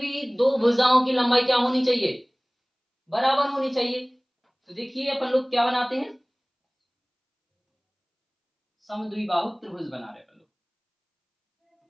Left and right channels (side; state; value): both; identical; correlation 1.00